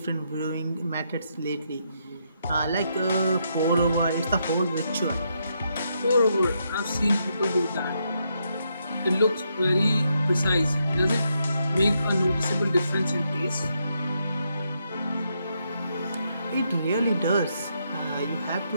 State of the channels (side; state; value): both; inverted; correlation -0.79